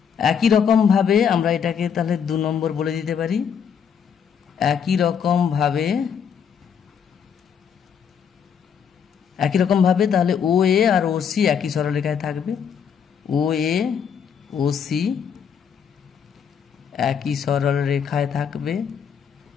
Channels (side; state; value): right; quieter; 7.4 dB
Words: একই রকম ভাবে আমরা এটাকে তাহলে 2 নম্বর বলে দিতে পারি। একই রকম ভাবে তাহলে ও এ আর ও সি একই সরলরেখায় থাকবে। ও এ ও সি একই সরল রেখায় থাকবে।